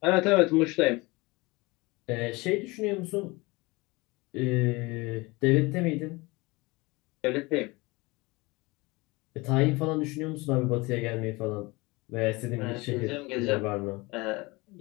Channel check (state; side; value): quieter; right; 23.9 dB